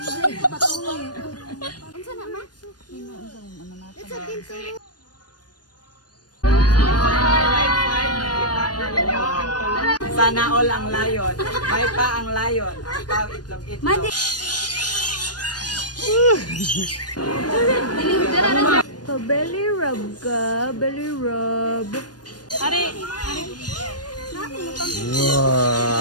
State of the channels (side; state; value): right; late; 0.69 ms